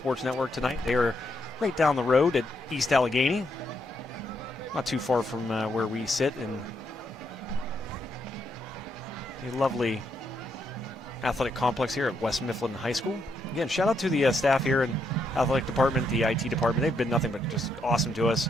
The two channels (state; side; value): normal; both; correlation 0.77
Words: Network tonight. They are right down the road at East Allegheny. Not too far from where we sit in the lovely athletic complex here at West Mifflin High School. Again, shout out to the staff here in athletic department, the IT department. They've been nothing but just awesome to us.